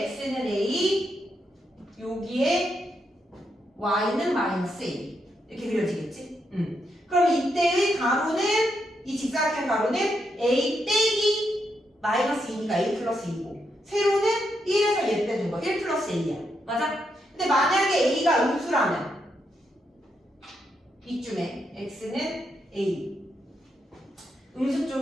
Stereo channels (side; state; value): both; normal; correlation 0.81